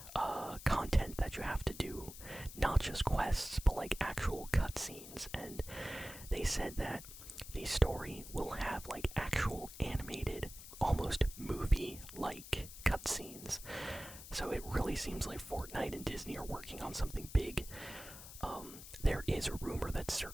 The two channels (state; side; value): noise; left; hiss, 14 dB below the sound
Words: content that you have to do, not just quests, but like actual cutscenes. And they said that the story will have like actual animated, almost movie-like cutscenes. So it really seems like Fortnite and Disney are working on something big. There is a rumor that's